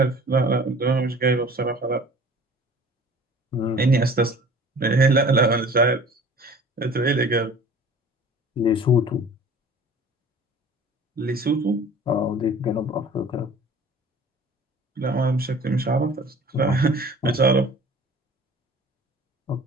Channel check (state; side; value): normal; both; correlation 0.46